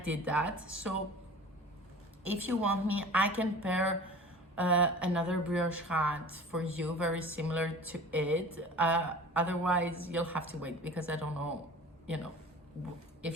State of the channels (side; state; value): both; normal; correlation 0.40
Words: that. So if you want me, I can pair another brioche hat for you, very similar to it. Otherwise, you'll have to wait because I don't know, if